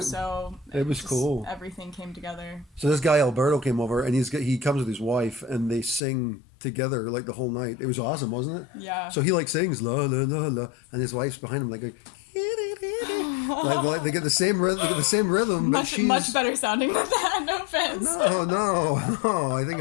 So it was cool. Everything came together. So this guy Alberto came over, and he comes with his wife, and they sing together like the whole night. It was awesome, wasn't it? Yeah. So he like sings la la la la, and his wife's behind him like like they get the same rhythm, but she's much better sounding than that. No offense. No. I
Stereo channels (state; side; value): drops out; right; at 6.0 s